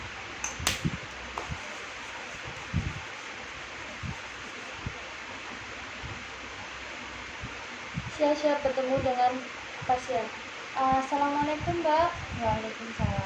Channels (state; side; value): identical; both; correlation 1.00